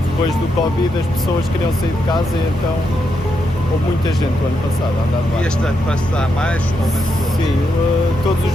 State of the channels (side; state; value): both; normal; correlation 0.82